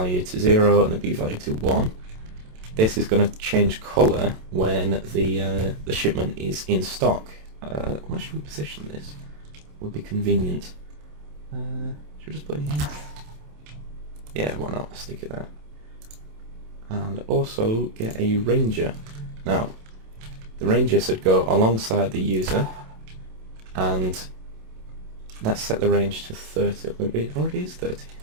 to 0 and the B value to 1, this is going to change colour when the shipment is in stock. Where should we position this? Would be convenient. Should we just put it here? Yeah, why not? Stick it there. And also get a ranger. Now, the ranger should go alongside the user, and let's set the range to 30. Maybe it already is 30.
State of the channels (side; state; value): left; late; 27 ms